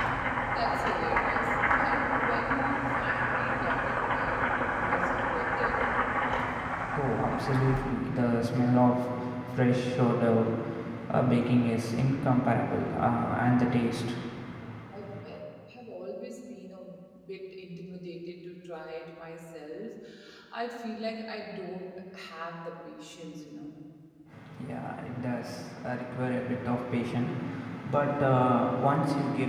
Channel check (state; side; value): identical; both; correlation 1.00